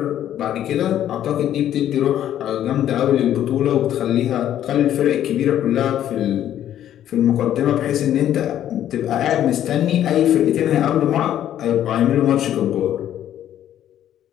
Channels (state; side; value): quieter; right; 11.2 dB